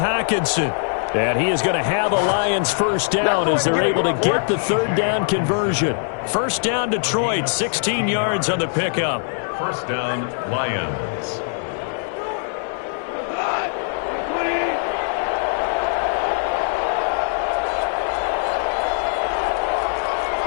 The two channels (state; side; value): silent; right; 65 dB below the other